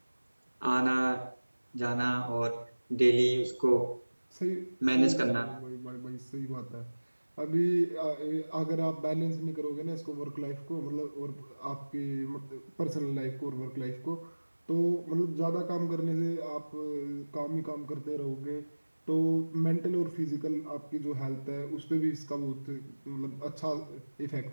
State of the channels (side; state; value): both; inverted; correlation -1.00